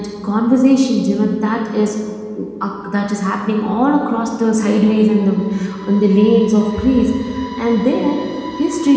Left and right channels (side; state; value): both; identical; correlation 1.00